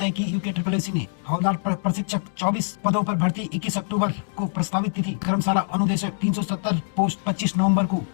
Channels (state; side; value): silent; right; digital silence